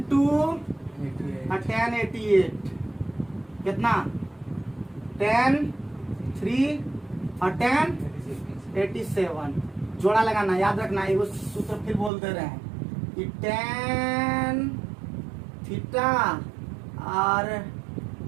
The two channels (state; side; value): drops out; left; at 12.1 s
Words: 2 और tan 88 कितना, tan 3 और tan 87। जोड़ा लगाना, याद रखना, ये सूत्र फिर बोल दे रहे हैं कि tan थीटा और